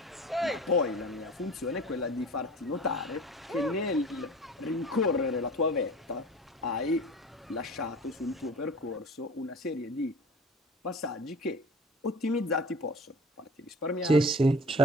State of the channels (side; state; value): both; normal; correlation 0.40